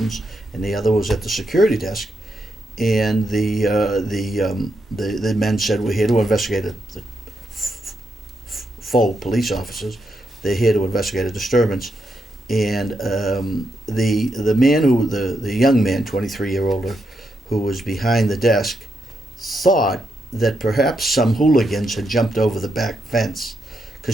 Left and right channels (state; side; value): normal; both; correlation 0.82